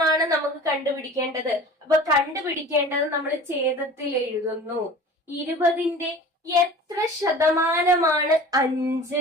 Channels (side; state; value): both; normal; correlation 0.40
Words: നമുക്ക് കണ്ടുപിടിക്കേണ്ടത്. അപ്പൊ കണ്ടുപിടിക്കേണ്ടത് നമ്മൾ ഛേദത്തിൽ എഴുതുന്നു. 20ന്റെ എത്ര ശതമാനമാണ്